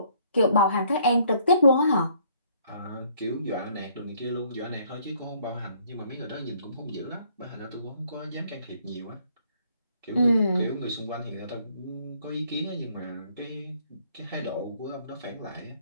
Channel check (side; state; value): both; inverted; correlation -0.63